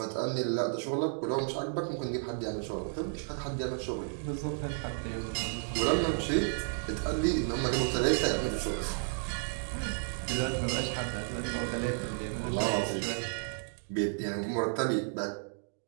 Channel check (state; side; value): silent; left; digital silence